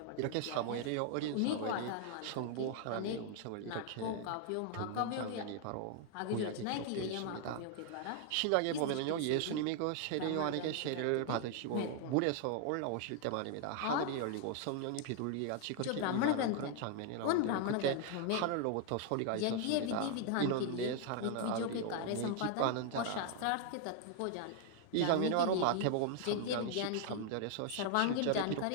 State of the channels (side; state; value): both; different; correlation 0.00